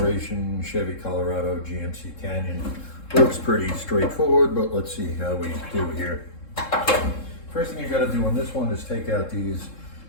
Chevy Colorado GMC Canyon. Looks pretty straightforward, but let's see how we do here. First thing you got to do on this one is take out these.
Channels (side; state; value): right; late; 3.7 ms